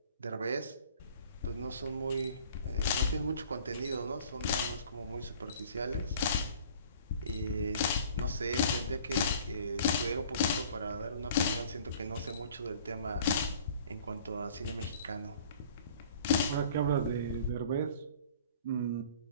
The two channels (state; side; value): inverted; both; correlation -0.50